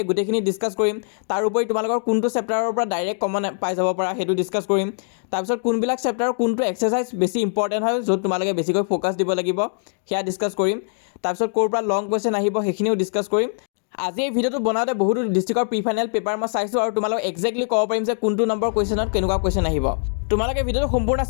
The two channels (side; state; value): right; silent; digital silence